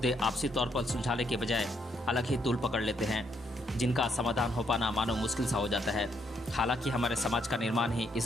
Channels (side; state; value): both; normal; correlation 0.74